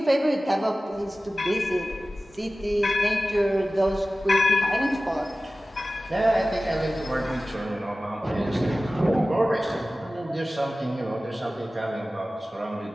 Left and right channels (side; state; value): both; normal; correlation 0.96